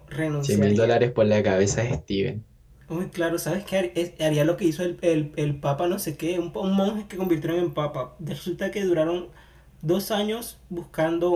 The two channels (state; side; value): identical; both; correlation 1.00